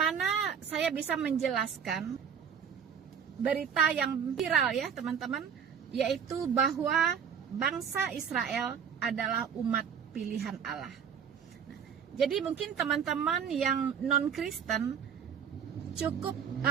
saya bisa menjelaskan berita yang viral ya teman-teman, yaitu bahwa bangsa Israel adalah umat pilihan Allah. Jadi mungkin teman-teman yang non-Kristen cukup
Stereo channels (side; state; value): left; quieter; 7.4 dB